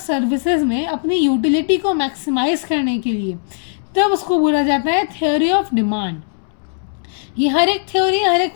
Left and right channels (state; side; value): silent; right; 67 dB below the other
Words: में अपनी यूटिलिटी को मैक्सिमाइज करने के लिए, तब उसको बोला जाता है थ्योरी ऑफ डिमांड। ये हर एक थ्योरी हर एक